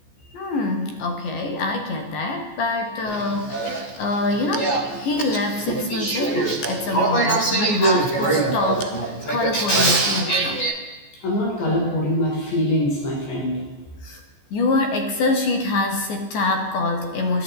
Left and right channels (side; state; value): right; late; 14 ms